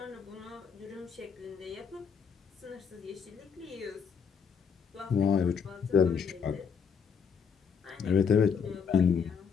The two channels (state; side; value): quieter; right; 6.4 dB